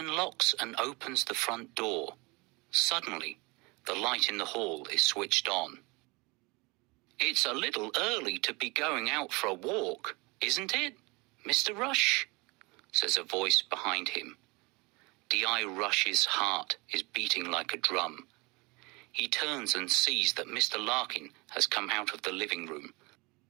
and opens the front door. Suddenly, the light in the hall is switched on. "It's a little early to be going out for a walk, isn't it, Mr. Rush?" says a voice behind him. D.I. Rush's heart is beating like a drum. He turns and sees that Mr. Larkin has come out of the living room.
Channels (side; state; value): left; quieter; 26.5 dB